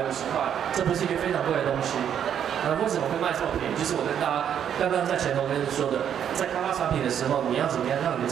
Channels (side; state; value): left; quieter; 9.0 dB